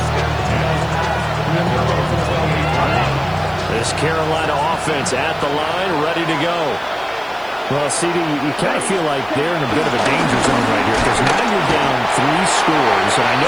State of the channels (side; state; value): right; noise; hiss, 28 dB below the sound